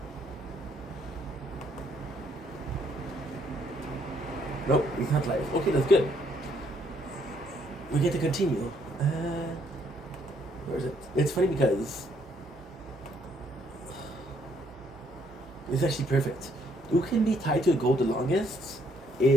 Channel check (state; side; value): normal; both; correlation 0.69